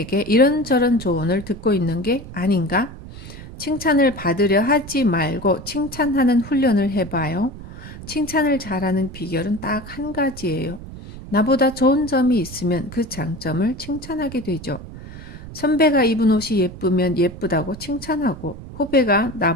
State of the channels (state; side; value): noise; right; rumble, 14 dB below the sound